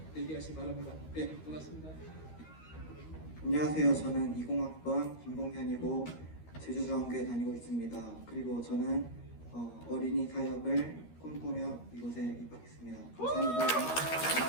얘기하시기 바랍니다. 네, 고맙습니다. 안녕하세요. 저는 20학번 김봉현이고 제주중앙교회 다니고 있습니다. 그리고 저는 어린이 사역을 꿈꾸며 이곳에 입학했습니다. 감사합니다.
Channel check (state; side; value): late; right; 13 ms